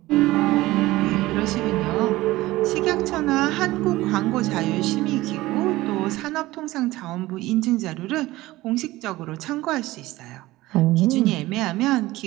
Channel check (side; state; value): left; quieter; 18.0 dB